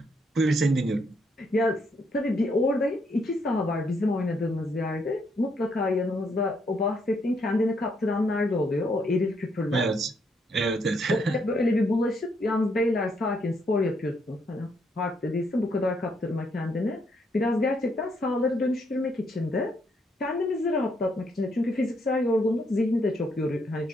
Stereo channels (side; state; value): both; normal; correlation 0.74